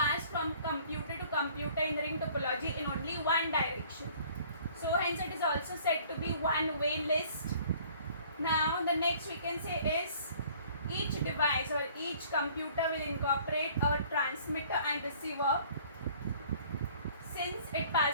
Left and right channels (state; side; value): inverted; both; correlation -0.54